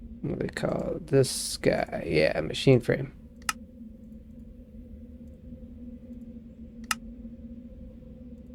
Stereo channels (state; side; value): identical; both; correlation 1.00